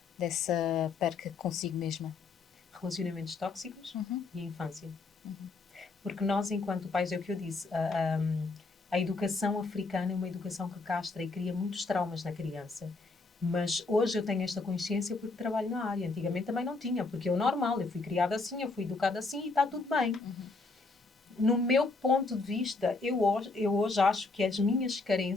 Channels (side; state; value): right; quieter; 3.7 dB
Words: dessa perca consigo mesma? Relacionamentos tóxicos e a infância. Porque nós, enquanto pais, é o que eu disse, a educação africana é uma educação que castra e cria muitos traumas na criança. Mas hoje eu tenho esta consciência porque trabalho na área. Antigamente também não tinha, porque é o normal. Eu fui criada assim, eu fui educada assim e está tudo bem. No meu ponto de vista, eu hoje acho que as minhas